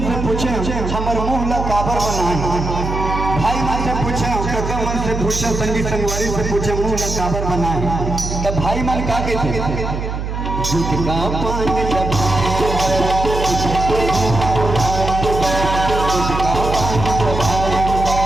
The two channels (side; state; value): right; noise; hum, 4 dB below the sound